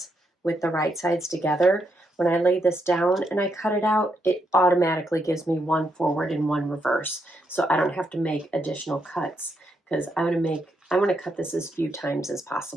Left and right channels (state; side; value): normal; both; correlation 0.79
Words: with the right sides together, when I lay this down and I cut it out, it automatically gives me one forward and one reverse. So I don't have to make additional cuts, because I want to cut this as few times as